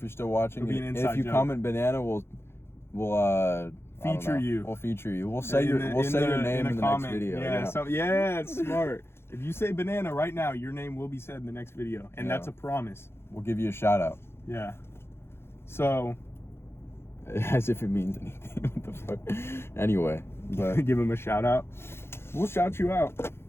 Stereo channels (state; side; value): late; right; 0.12 ms